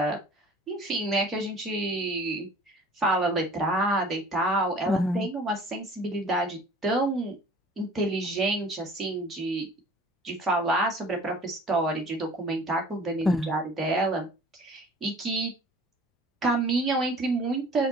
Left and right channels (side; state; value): both; normal; correlation 0.48